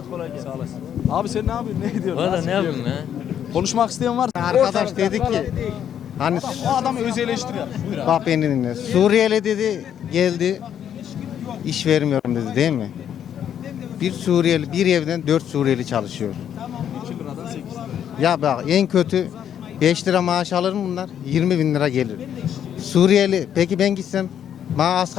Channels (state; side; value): quieter; right; 9.4 dB